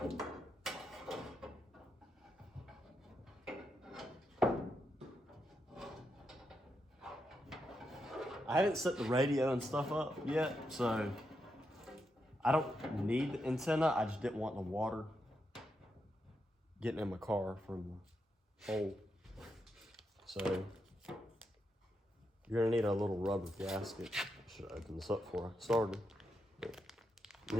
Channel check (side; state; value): both; normal; correlation 0.83